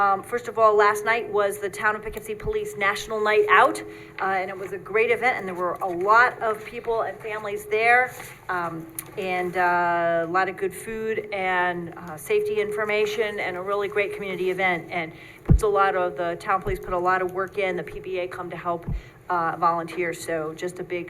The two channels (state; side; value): identical; both; correlation 1.00